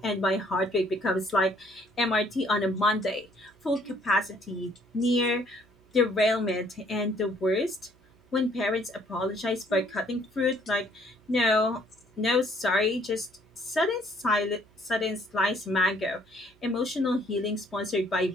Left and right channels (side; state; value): right; noise; hum, 30 dB below the sound